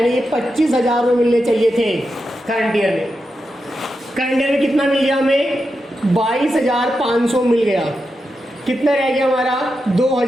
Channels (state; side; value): normal; both; correlation 0.88